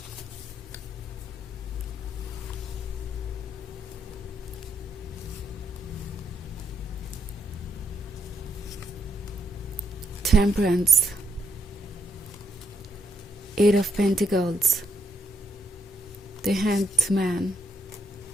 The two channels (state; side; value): normal; both; correlation 0.76